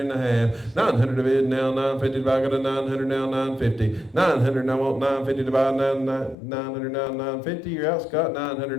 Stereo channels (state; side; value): drops out; right; at 6.4 s